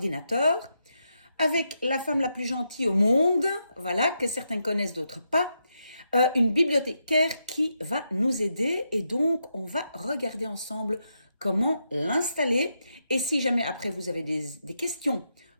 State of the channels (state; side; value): inverted; both; correlation -0.83